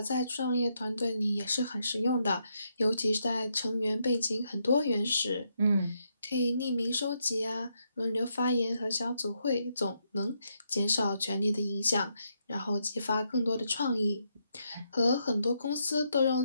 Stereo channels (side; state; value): both; inverted; correlation -0.79